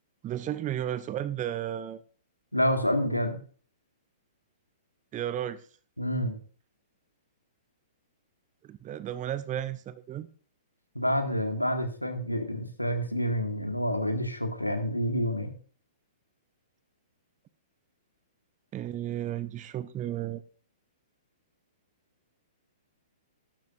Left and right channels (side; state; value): both; inverted; correlation -0.54